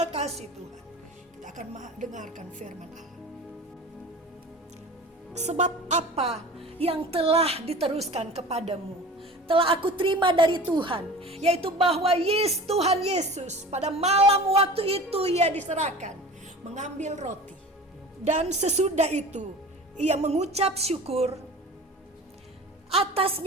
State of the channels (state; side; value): normal; both; correlation 0.38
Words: kasih Tuhan. Kita akan dengarkan firman Allah. Sebab apa yang telah diteruskan kepadamu telah aku terima dari Tuhan, yaitu bahwa Tuhan Yesus pada malam waktu itu ia diserahkan, mengambil roti, dan sesudah itu ia mengucap syukur